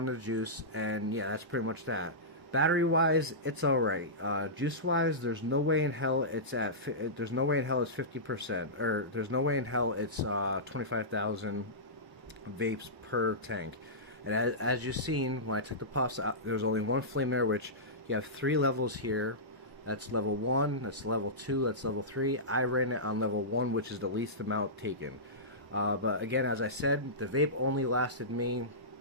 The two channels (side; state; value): left; late; 1.0 ms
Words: the juice, and yeah, that's pretty much that. Battery wise, it's alright. Juice wise, there's no way in hell it's there's no way in hell it's 50%, or there's no way in hell it's 25,000 vapes per tank. And as you've seen, when I took the puffs out, there's only one flame there, which you have 3 levels here. That's level 1, that's level 2, that's level 3. I ran it on level 1, which is the least amount taken. But again, as I said, the vape only lasted me